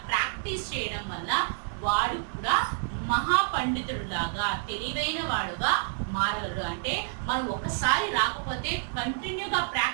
ప్రాక్టీస్ చేయడం వల్ల వాడు కూడా మహాపండితుడులాగా, తెలివైన వాడుగా మారగలరు. అంటే మనం ఒకసారి రాకపోతే కంటిన్యూగా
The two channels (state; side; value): silent; left; digital silence